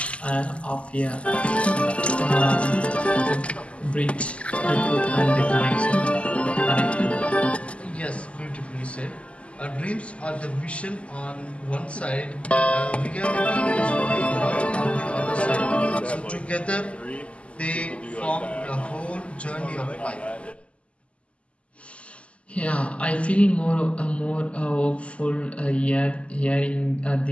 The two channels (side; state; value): right; late; 0.058 ms